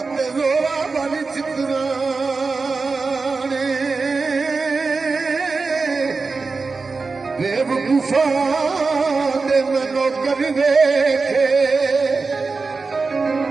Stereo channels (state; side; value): quieter; left; 4.2 dB